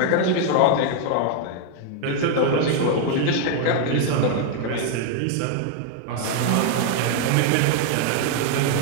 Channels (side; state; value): both; different; correlation 0.00